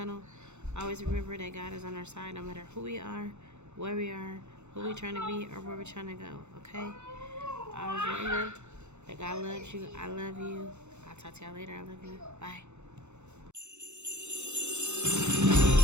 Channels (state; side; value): late; left; 0.83 ms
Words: Always remember that God is on our side no matter who we are, where we are, who we're trying to be, or where we're trying to go. Okay? Always remember that God loves you. I love you. I'll talk to y'all later. I love you. Bye.